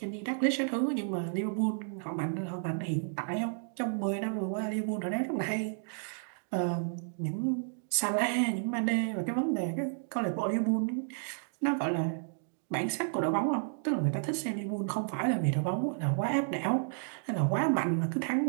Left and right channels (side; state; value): left; silent; digital silence